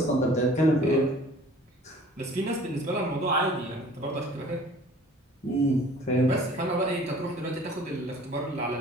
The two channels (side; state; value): both; normal; correlation 0.49